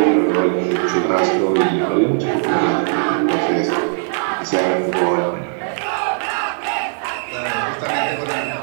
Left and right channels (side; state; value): left; silent; 67 dB below the other